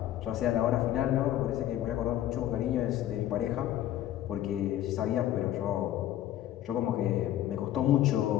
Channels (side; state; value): right; quieter; 12.6 dB